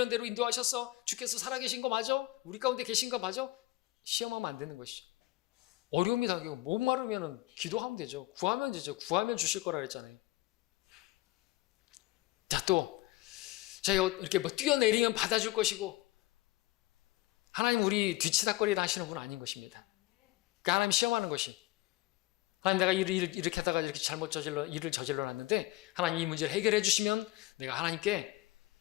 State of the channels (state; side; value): quieter; right; 19.4 dB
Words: 대로 인도하셨어. 주께서 살아계신 거 맞아? 우리 가운데 계신 거 맞아? 시험하면 안 되는 것이죠. 어려움이 당기고 목마르면 기도하면 되죠. 구하면 되죠. 구하면 주실 거라 그랬잖아요. 자, 또 저희가 이렇게 뭐 뛰어내리면 받아줄 것이고 하나님 우리 뒤치다거리를 하시는 분 아닌 것입니다. 그러니까 하나님 시험하는 것이 하나님 내가 일을 이렇게 하다가 이렇게 잘못 일을 저질러 놨는데 하나님 이 문제를 해결해 주시면 내가 하나님께